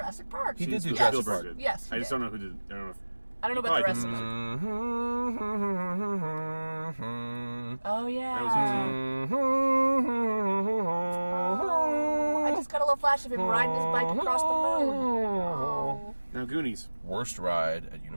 Park. He did do Spielberg Jurassic Park. did. Yes, he I just did. don't know who did. I don't know. If, I don't know about the rest probably of did it. Mm-hmm. Oh, yeah. That was Oh, I just got a little flash of him riding his bike across the moon. Oh. Now Goonies. Worst ride at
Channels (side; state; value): both; inverted; correlation -1.00